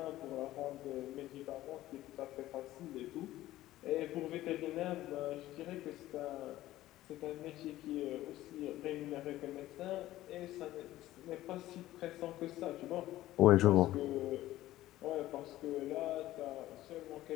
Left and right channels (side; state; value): right; quieter; 15.2 dB